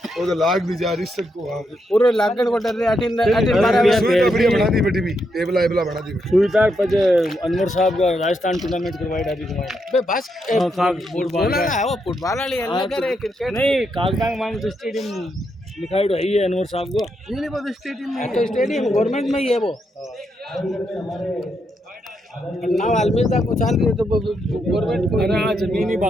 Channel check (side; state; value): both; normal; correlation 0.81